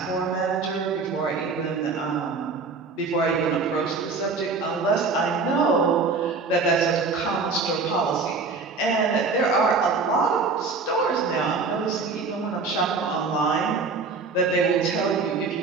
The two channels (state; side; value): quieter; left; 4.3 dB